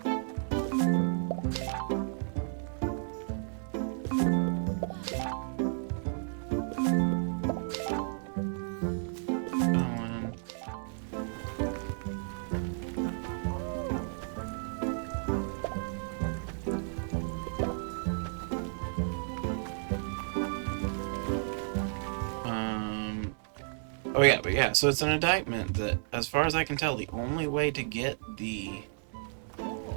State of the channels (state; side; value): silent; left; digital silence